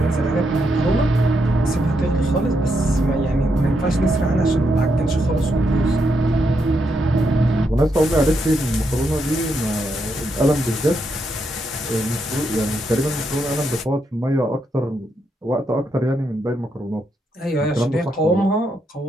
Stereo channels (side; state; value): both; normal; correlation 0.80